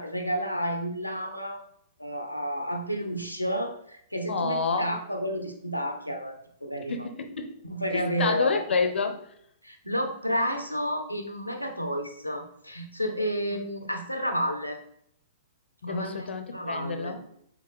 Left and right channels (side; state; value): both; inverted; correlation -0.66